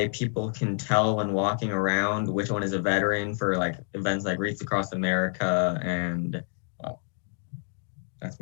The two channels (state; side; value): silent; right; 59 dB below the other